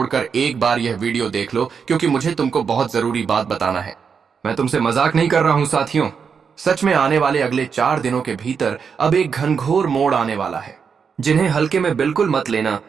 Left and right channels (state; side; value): quieter; left; 6.2 dB